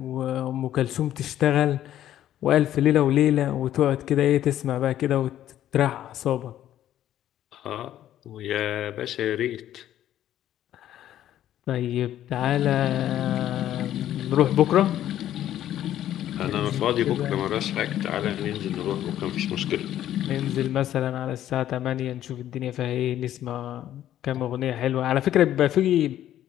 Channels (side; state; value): right; quieter; 12.0 dB